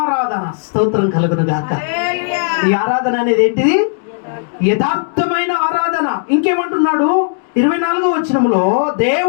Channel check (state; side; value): silent; right; digital silence